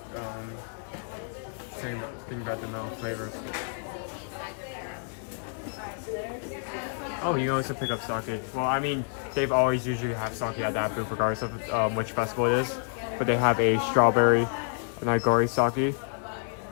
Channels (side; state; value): right; silent; 59 dB below the other